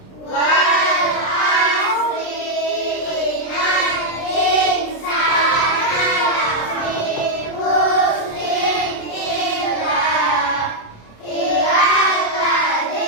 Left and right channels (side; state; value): right; late; 27 ms